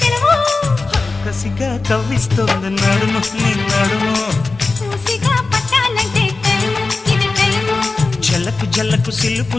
సెలవు కసిగా కవ్విస్తోంది నడుము నీ నడుము మూసిగా పట్టాలంటే టైము ఇది టైము జలకు జలకు సిలుపు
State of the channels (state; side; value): quieter; right; 3.8 dB